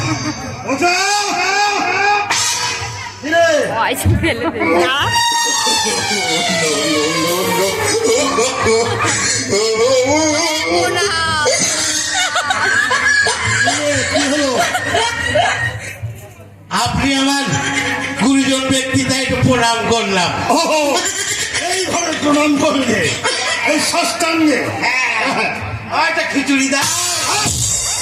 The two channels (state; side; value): identical; both; correlation 1.00